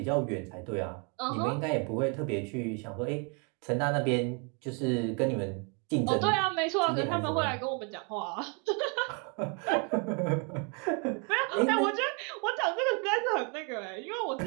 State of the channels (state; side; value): quieter; left; 35.7 dB